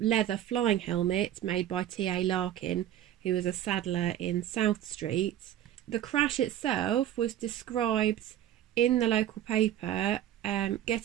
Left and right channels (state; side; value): quieter; left; 11.9 dB